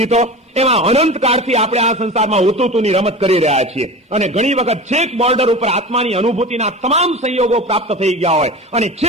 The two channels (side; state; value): both; normal; correlation 0.32